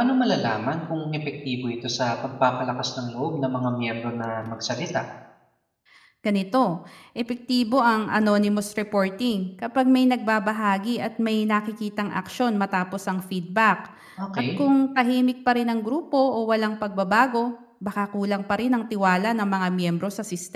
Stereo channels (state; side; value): identical; both; correlation 1.00